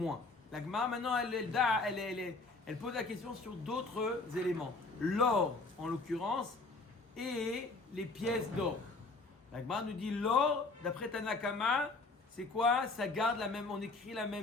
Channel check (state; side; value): quieter; right; 3.5 dB